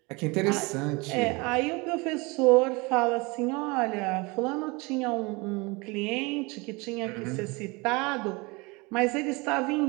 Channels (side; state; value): left; quieter; 26.3 dB